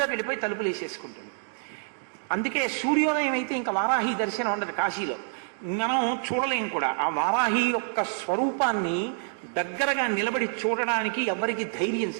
వెళ్ళిపోయి తలుపులు వేసేసుకుంటుంది. అందుకే సూర్యోదయం అయితే ఇంకా వారాహి దర్శనం ఉండదు. కాశీలో మనం చూడలేం కూడా. ఆ వారాహి యొక్క స్వరూపాన్ని దగ్గరగా నిలబడి చూడడానికి ఎవరికి ధైర్యం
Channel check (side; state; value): left; silent; digital silence